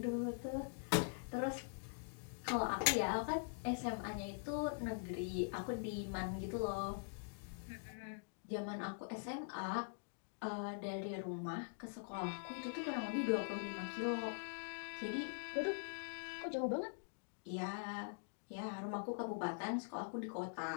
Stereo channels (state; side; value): silent; right; digital silence